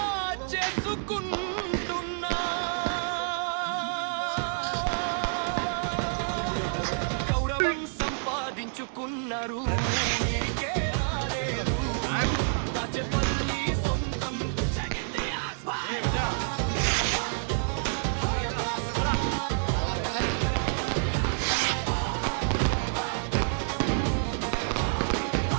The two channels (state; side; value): silent; left; digital silence